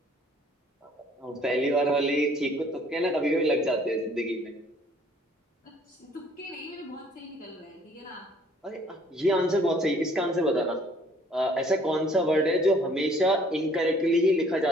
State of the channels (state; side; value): normal; both; correlation 0.59